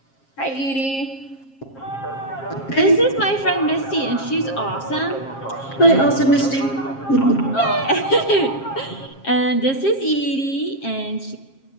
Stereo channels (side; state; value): right; late; 7.4 ms